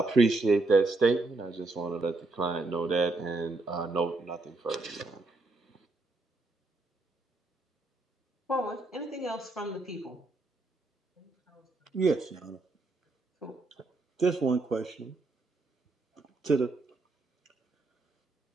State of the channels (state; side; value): quieter; left; 3.2 dB